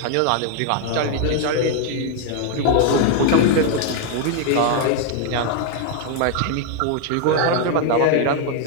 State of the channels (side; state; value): both; different; correlation 0.00